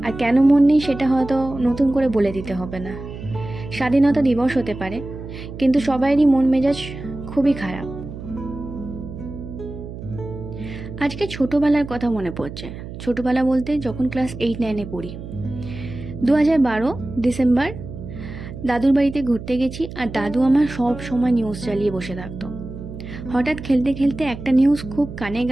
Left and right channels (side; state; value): right; noise; hum, 11 dB below the sound